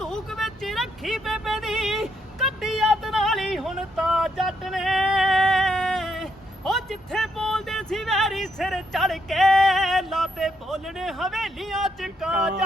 ਵਿੱਚ ਰੱਖੀ ਬੇਬੇ ਦੀ ਕੱਢੀ ਯਾਦ ਨਾਲੀ ਹੁਣ ਤਾਂ ਜੱਟ ਨੇ ਉਹ ਜਿੱਥੇ ਬੋਲਦੇ ਸੀ ਵੈਰੀ ਸਿਰ ਚੜ ਕੇ ਲਾਤੇ ਬੋਲਣੇ ਹਵੇਲੀਆਂ ਚ ਕਾਂ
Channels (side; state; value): both; normal; correlation 0.77